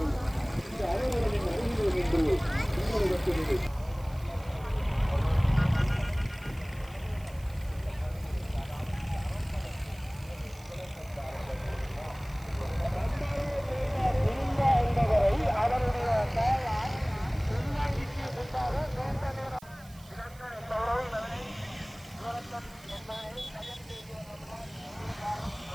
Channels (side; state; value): right; noise; hiss, 23 dB below the sound